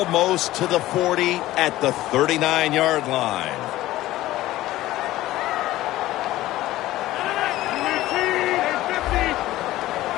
to the 40 at the 39-yard line.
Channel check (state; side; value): quieter; right; 15.9 dB